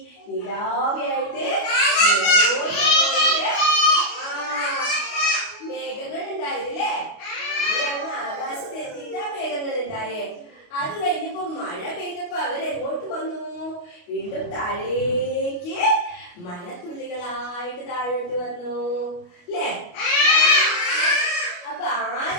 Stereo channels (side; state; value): right; late; 29 ms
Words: നിലാവിയായിട്ട് മേഘങ്ങൾ ഉണ്ടായിരുന്നില്ലേ. ഇവരങ്ങ് ആകാശത്ത് എത്തിയിട്ടാ മേഘങ്ങൾ ഉണ്ടായേ. അത് കഴിഞ്ഞപ്പോ മഴ പെയ്തപ്പോ അവരെങ്ങോട്ട് വന്നു? വീണ്ടും താഴേക്ക് മഴത്തുള്ളികളായിട്ട് താഴോട്ട് വന്നു അല്ലേ. അപ്പൊ